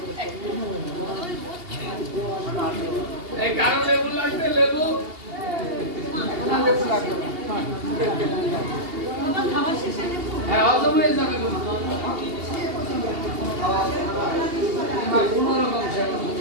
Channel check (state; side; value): late; left; 2.8 ms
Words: এই কারো লেবু লাগবে লেবু হ্যাঁ হজম হয়ে যাবে কোনো রকম সেবা